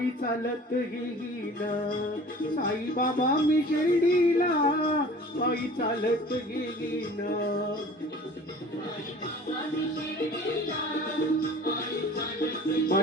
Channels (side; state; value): both; normal; correlation 0.45